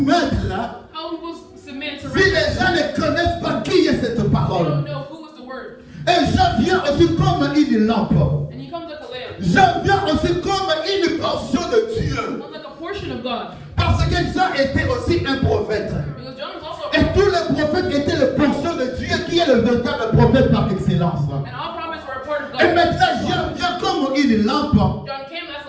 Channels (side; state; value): both; identical; correlation 1.00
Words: là? How people submit to si les gens ne connaissent pas qui est cette they parole. don't know who is the word. Et Jean vient aussi comme une lampe. And he comes like a lamp. Jean vient aussi comme une portion de Dieu. Comes like a portion of God. Parce que Jean était aussi un prophète. Because John was also a Et prophet. tous les prophètes étaient le portion de Dieu qui est le véritable prophète par excellence. And all prophets were a part of Et God. maintenant Jean vient comme une lampe John came as